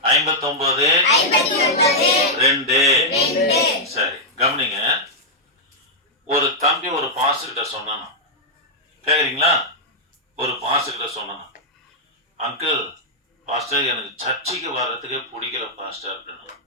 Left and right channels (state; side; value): normal; both; correlation -0.06